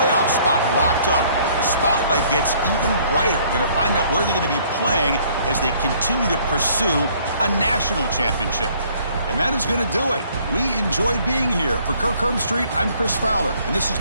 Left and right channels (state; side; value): inverted; both; correlation -0.60